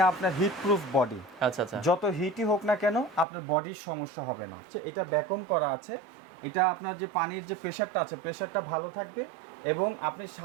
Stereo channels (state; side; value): drops out; left; at 3.2 s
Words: আপনার হিট প্রুফ বডি। আচ্ছা আচ্ছা, যত হিটই হোক না কেন আপনার বডির সমস্যা হবে না। এটা ভ্যাকুম করা আছে, এটা আপনার যে পানির যে প্রেশারটা আছে প্রেশারটা ভালো থাকবে এবং আপনি